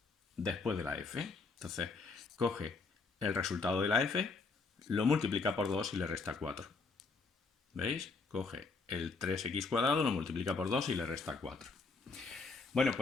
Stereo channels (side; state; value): right; quieter; 4.2 dB